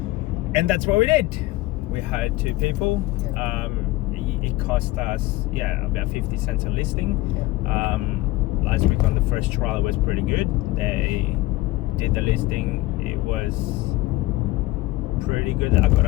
And that's what we did. We hired 2 people. It cost us about 50 cents a listing. Last week on the first trial it was pretty good. They did the listing. It was pretty good. I got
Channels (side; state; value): right; quieter; 18.4 dB